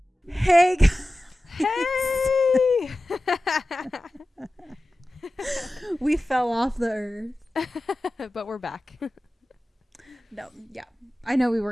Hey guys. Hey! We fell off the earth. But we're back. No, yeah. I know we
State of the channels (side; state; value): both; normal; correlation 0.95